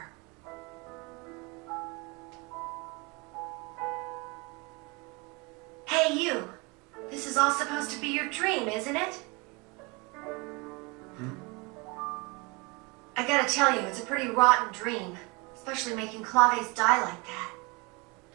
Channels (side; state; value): left; quieter; 27.6 dB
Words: Hey, you. This is all supposed to be your dream, isn't it? I gotta tell you, it's a pretty rotten dream. Especially making Claves die like that.